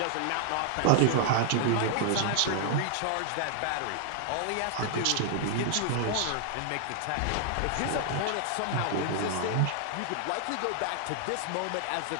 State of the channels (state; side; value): different; both; correlation 0.00